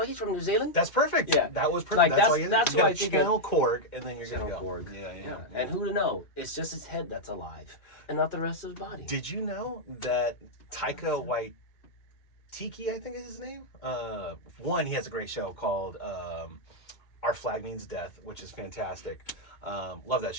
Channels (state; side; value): late; right; 2.2 ms